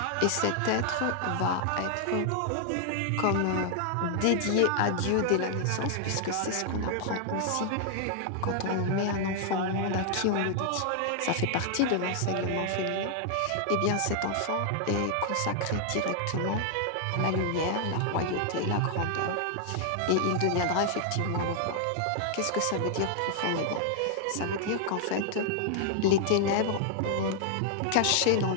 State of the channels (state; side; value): different; both; correlation -0.01